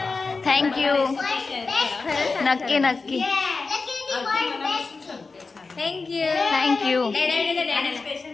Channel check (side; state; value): right; quieter; 4.1 dB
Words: थँक्यू. नक्की थँक्यू. थँक्यू.